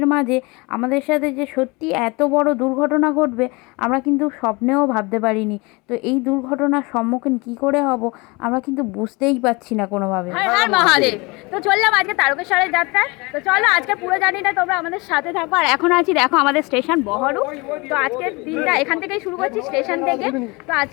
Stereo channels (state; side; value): quieter; right; 26.2 dB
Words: মাঝে আমাদের সাথে যে সত্যি এত বড় দুর্ঘটনা ঘটবে আমরা কিন্তু স্বপ্নেও ভাবতে পারিনি। তো এই দুর্ঘটনার সম্মুখীন কি করে হব আমরা কিন্তু বুঝতেই পারছি না কোনোভাবে। হর হর মহাদেব। তো চললাম আজকে তারকেশ্বরের যাত্রায়। তো চলো আজকে পুরো জার্নিটা তোমরা আমাদের সাথে থাকো। আর এখন আছি দেখো আমাদের স্টেশন বহরু। তো আজকের দিনটা এখান থেকেই শুরু করছি, স্টেশন থেকে। তো